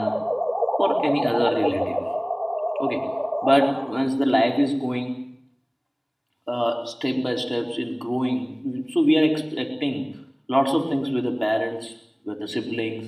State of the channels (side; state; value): both; identical; correlation 1.00